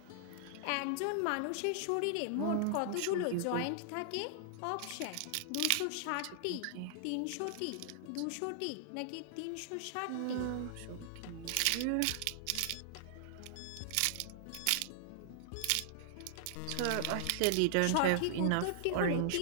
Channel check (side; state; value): both; different; correlation -0.01